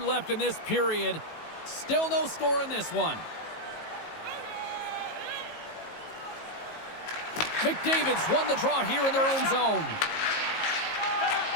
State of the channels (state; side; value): late; right; 19 ms